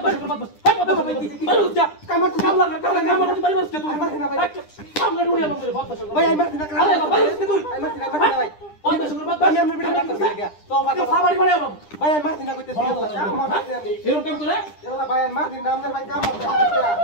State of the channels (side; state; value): right; late; 9.9 ms